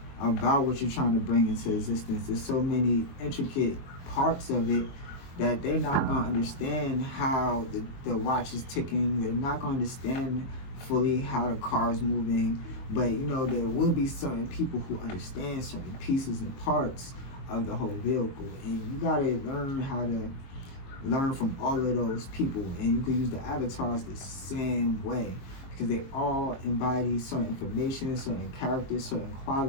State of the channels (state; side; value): late; right; 22 ms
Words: about what you're trying to bring into existence. There's so many intricate parts of it that they're not going to understand how the watch is ticking. They're not going to understand fully how the car is moving. But, there will be certain people who understand certain pieces and parts of the whole vehicle. And you got to learn how to learn from all of those people. And you can use the avatars the same way, because they all embody certain information, certain characters, certain